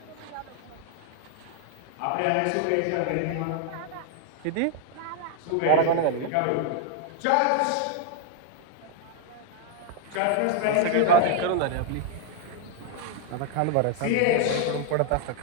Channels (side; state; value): both; different; correlation 0.00